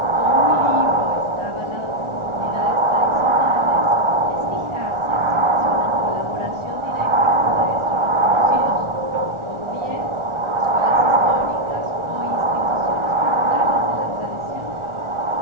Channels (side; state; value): left; late; 1.4 ms